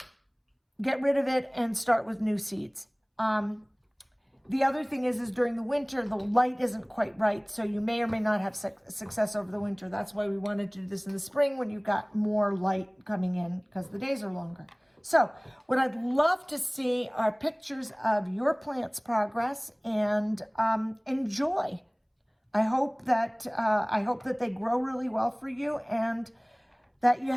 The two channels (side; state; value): both; identical; correlation 1.00